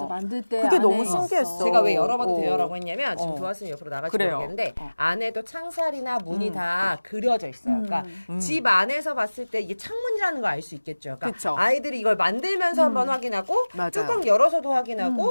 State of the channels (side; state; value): both; inverted; correlation -1.00